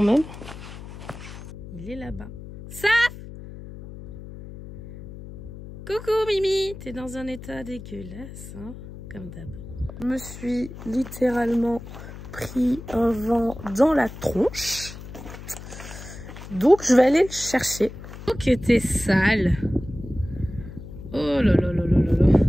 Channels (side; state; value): left; noise; hum, 13 dB below the sound